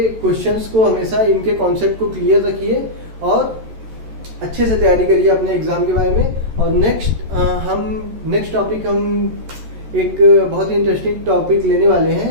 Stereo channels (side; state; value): left; late; 13 ms